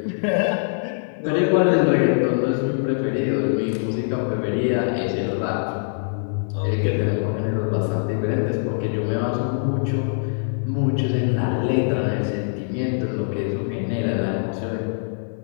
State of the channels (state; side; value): silent; right; 55 dB below the other